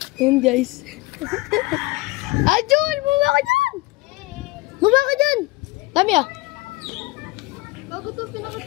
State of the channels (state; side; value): quieter; right; 22.0 dB